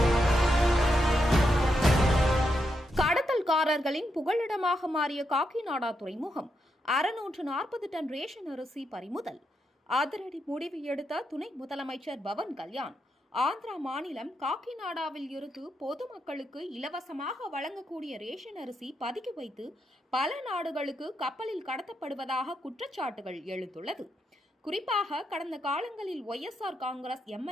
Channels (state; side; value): normal; both; correlation 0.83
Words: கடத்தல்காரர்களின் புகலிடமாக மாறிய காக்கிநாடா துறைமுகம் 640 டன் ரேஷன் அரிசி பறிமுதல். அதிரடி முடிவு எடுத்த துணை முதலமைச்சர் பவன் கல்யாண் ஆந்திரா மாநிலம் காக்கிநாடாவில் இருந்து பொதுமக்களுக்கு இலவசமாக வழங்கக்கூடிய ரேஷன் அரிசி பதுக்கி வைத்து பல நாடுகளுக்கு கப்பலில் கடத்தப்படுவதாக குற்றச்சாட்டுகள் எழுந்துள்ளது. குறிப்பாக கடந்த காலங்களில் ஒய்எஸ்ஆர் காங்கிரஸ்